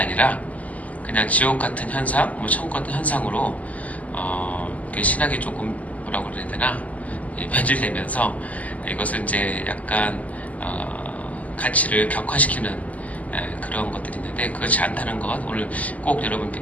그냥 지옥 같은 현상, 천국 같은 현상으로 신학이 조금 뭐라고 그래야 되나 변질되면서 이것을 이제 약간 가치를 격화시키는 그런 것들이 있는데, 그렇지 않다는 것 오늘 꼭 여러분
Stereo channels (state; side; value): late; right; 0.073 ms